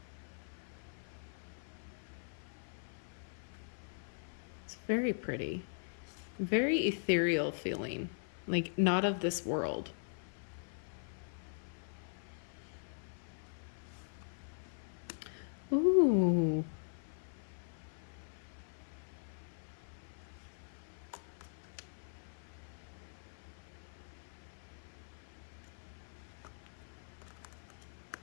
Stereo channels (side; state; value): right; silent; 50 dB below the other